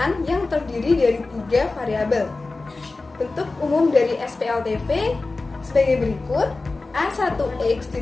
yang terdiri dari 3 variabel. Bentuk umum dari SPLTV sebagai berikut: A1X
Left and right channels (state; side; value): quieter; right; 3.5 dB